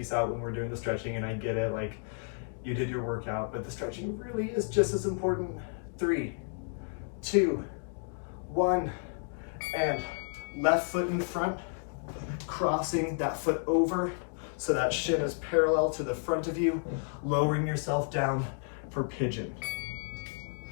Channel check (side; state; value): right; silent; 57 dB below the other